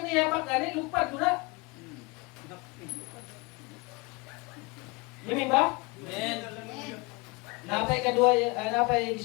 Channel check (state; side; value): quieter; right; 26.6 dB